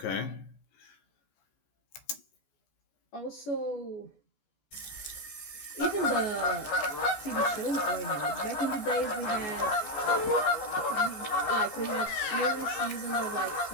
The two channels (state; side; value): late; right; 15 ms